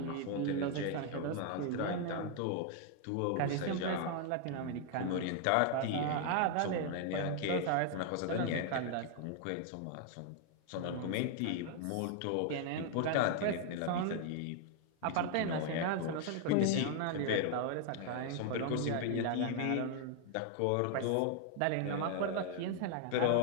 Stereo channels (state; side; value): different; both; correlation 0.00